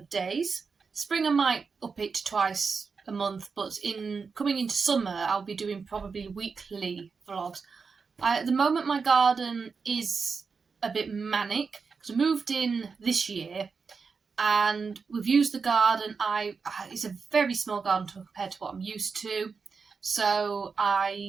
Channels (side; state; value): left; quieter; 5.2 dB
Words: days. Spring I might up it to twice a month, but coming into summer I'll be doing probably weekly vlogs. At the moment my garden is a bit manic because I moved in this year and we've used the garden. It's a very small garden compared to what I'm used to, so